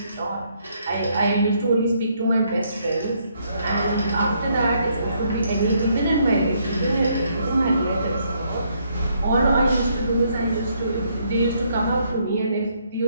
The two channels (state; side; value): inverted; both; correlation -0.72